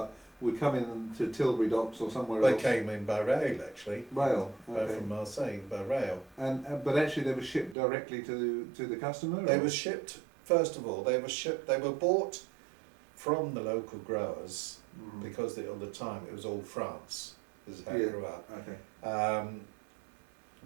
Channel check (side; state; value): left; drops out; at 7.8 s